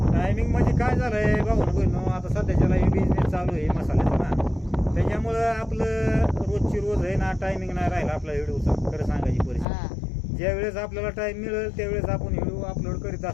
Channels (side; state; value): right; drops out; at 9.7 s